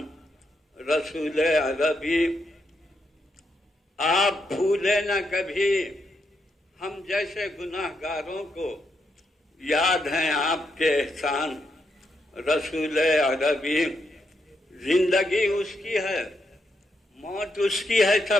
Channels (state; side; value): normal; both; correlation 0.80